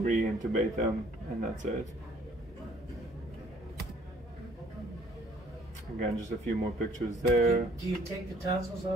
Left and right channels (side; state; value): both; normal; correlation 0.59